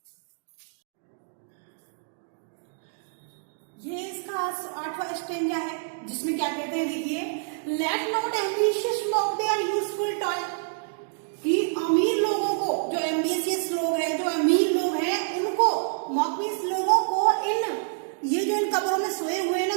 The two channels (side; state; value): left; silent; digital silence